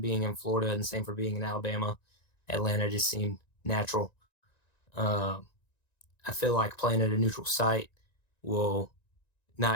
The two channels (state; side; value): late; right; 1.9 ms